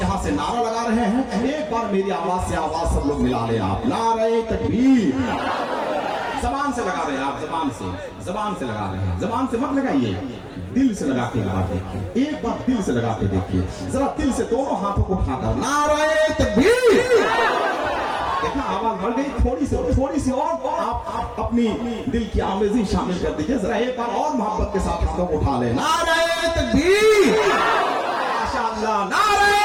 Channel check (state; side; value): identical; both; correlation 1.00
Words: से नारा लगा रहे हैं, एक बार मेरी आवाज से आवाज सब लोग मिला लें आप। नारे तकबीर, जबान से लगा रहे हैं आप, जबान से लगा रहे हैं, जबान से मत लगाइए, दिल से लगा के लगा देखिए, एक बार दिल से लगा के देखिए, जरा दिल से दोनों हाथों को उठाकर नारे तकबीर। देखा आवाज बढ़ गई, थोड़ी सी और आप अपनी दिल की आमेज़ी शामिल कर दीजिए। जरा एक बार और मोहब्बत के साथ हाथों को उठा ले, नारे तकबीर, माशाअल्लाह,